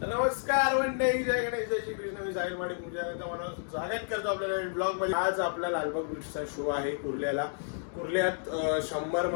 मंडळी, जय गणेश, जय श्री कृष्ण. मी साहिल माडी पूजा मला स्वागत करतो आपल्याला ब्लॉग मध्ये. आज आपला लालबाग बीचचा शो आहे कुर्ल्याला. कुर्ल्यात 100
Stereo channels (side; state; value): right; silent; digital silence